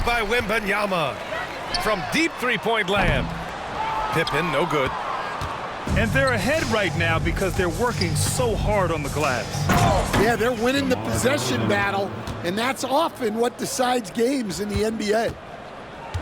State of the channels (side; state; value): both; identical; correlation 1.00